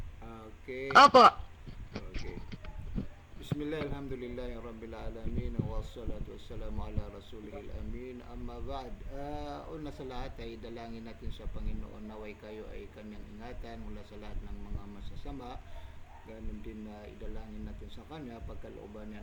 Okay. Opo. Okay. Bismillah, alhamdulillah, rabbil alamin, wassalatu wassalamu ala rasulihil amin, amma ba'd. Una sa lahat ay dalangin natin sa Panginoon naway kayo ay kanyang ingatan mula sa lahat ng mga masasama. Ganun din na idalangin natin sa kanya pagkalooban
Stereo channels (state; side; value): identical; both; correlation 1.00